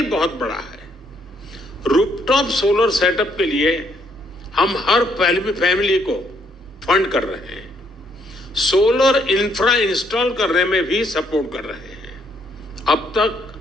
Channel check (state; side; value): normal; both; correlation 0.71